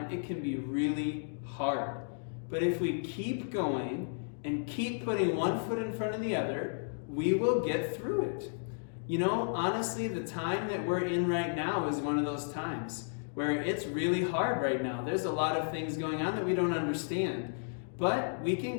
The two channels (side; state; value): right; silent; digital silence